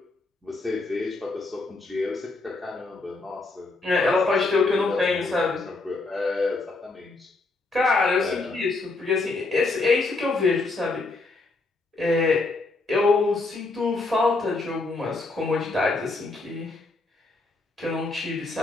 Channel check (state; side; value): quieter; right; 3.4 dB